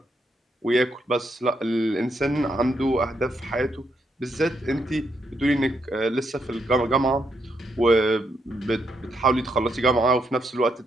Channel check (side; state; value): both; normal; correlation 0.78